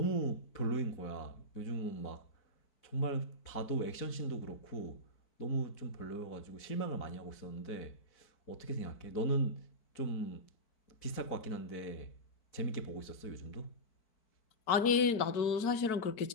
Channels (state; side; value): late; right; 4.5 ms